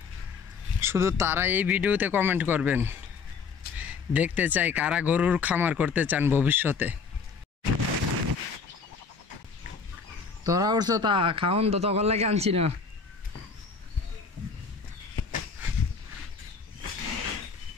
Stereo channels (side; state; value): right; quieter; 5.3 dB